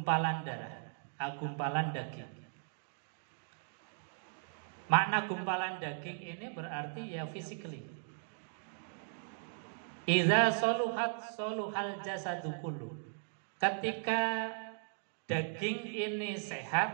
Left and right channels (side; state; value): left; silent; digital silence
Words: darah, gumpalan daging. Makna gumpalan daging ini berarti ya physically. Idza soluhat soluhal jasadu kullu. Ketika daging ini